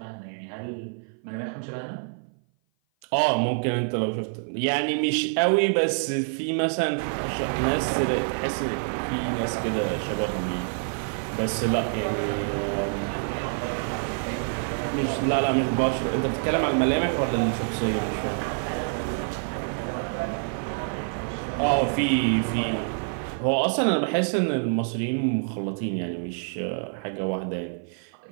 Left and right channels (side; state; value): left; silent; 56 dB below the other